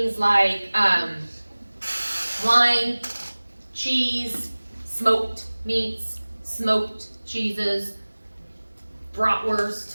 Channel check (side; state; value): both; inverted; correlation -1.00